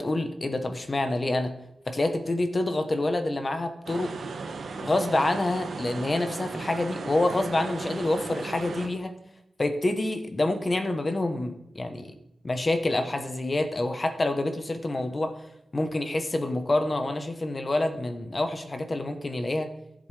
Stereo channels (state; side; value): normal; both; correlation 0.95